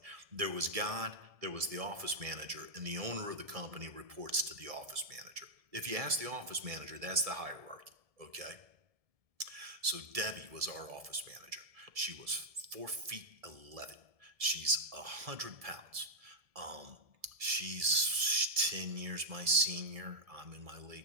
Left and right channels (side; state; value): left; late; 1.7 ms